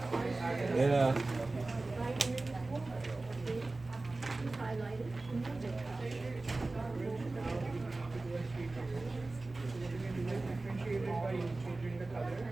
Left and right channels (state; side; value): quieter; left; 3.2 dB